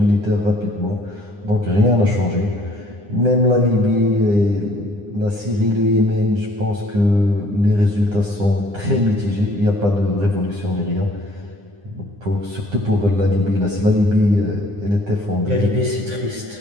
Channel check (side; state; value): left; late; 9.8 ms